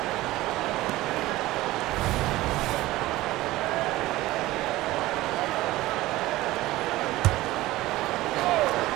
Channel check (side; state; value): left; quieter; 17.6 dB